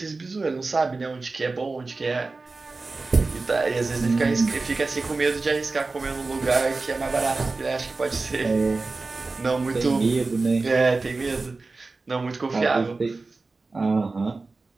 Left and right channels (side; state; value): left; quieter; 3.7 dB